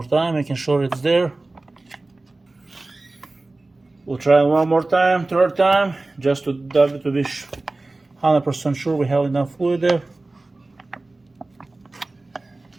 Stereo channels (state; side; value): quieter; left; 3.1 dB